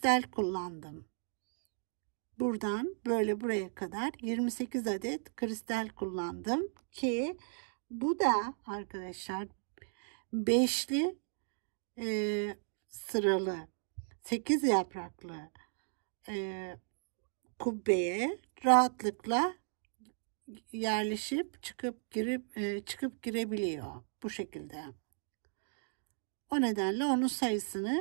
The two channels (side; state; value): left; silent; digital silence